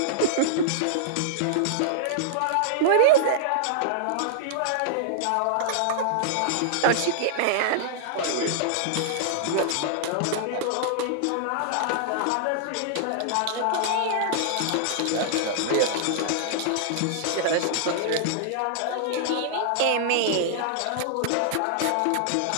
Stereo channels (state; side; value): different; both; correlation -0.01